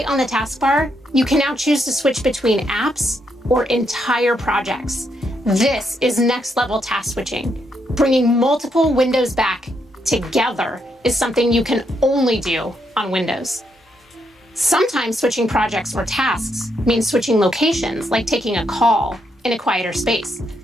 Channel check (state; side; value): normal; both; correlation 0.78